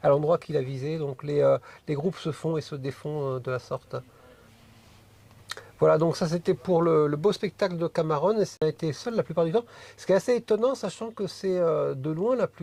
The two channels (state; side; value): identical; both; correlation 1.00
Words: à l'endroit qu'il a visé. Donc les groupes se font et se défont de la sorte. Voilà, donc ça c'était pour le beau spectacle de Camarones, et ça a été seul la plupart du temps. Ce qui est assez étonnant, sachant que c'est de loin la